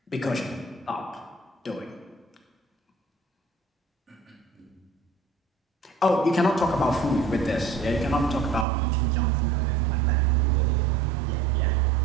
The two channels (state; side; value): drops out; left; at 8.7 s